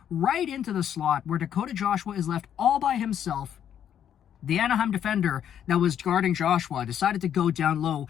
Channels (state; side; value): quieter; right; 9.5 dB